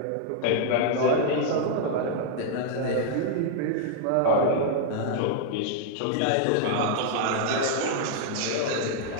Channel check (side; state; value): both; different; correlation 0.00